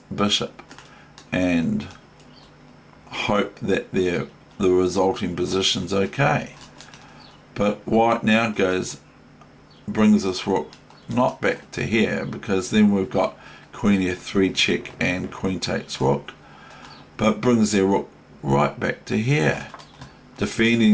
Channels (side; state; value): both; identical; correlation 1.00